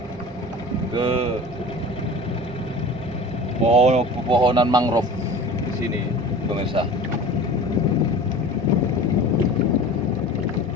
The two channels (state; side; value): normal; both; correlation 0.38